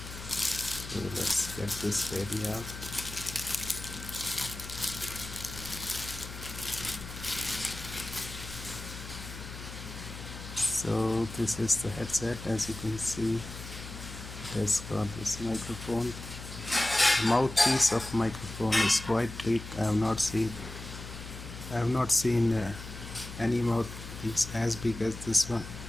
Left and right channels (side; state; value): left; noise; hum, 11 dB below the sound